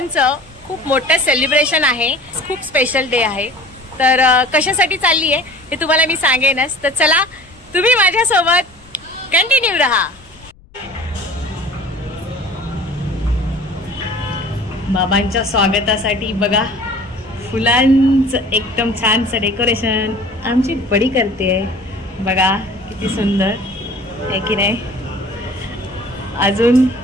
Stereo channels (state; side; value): noise; left; rumble, 26 dB below the sound